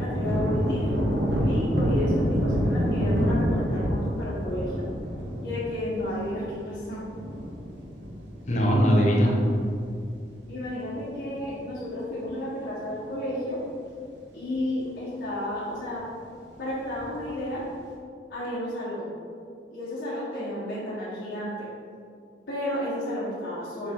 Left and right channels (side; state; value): both; normal; correlation 0.72